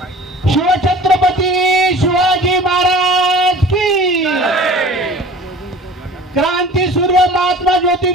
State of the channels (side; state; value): both; normal; correlation 0.43